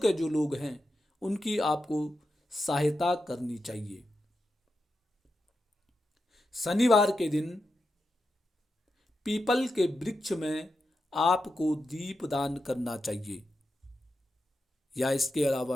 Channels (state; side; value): normal; both; correlation 0.88